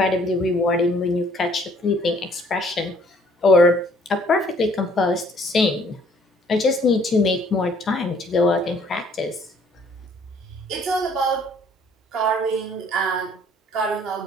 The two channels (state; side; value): normal; both; correlation 0.60